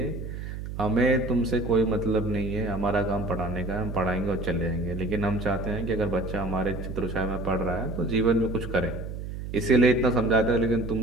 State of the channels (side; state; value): right; noise; hum, 8 dB below the sound